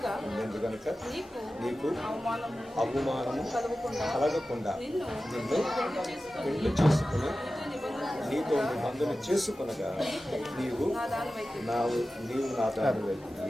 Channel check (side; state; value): both; normal; correlation 0.94